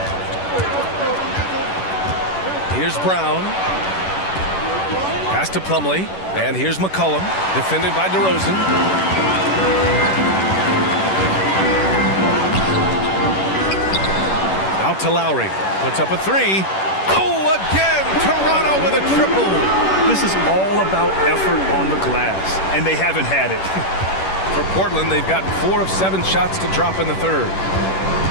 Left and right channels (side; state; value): right; late; 10 ms